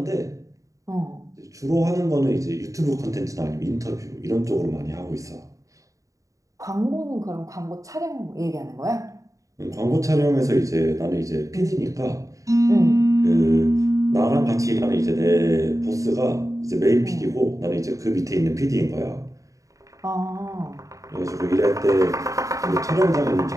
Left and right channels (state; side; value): late; left; 0.16 ms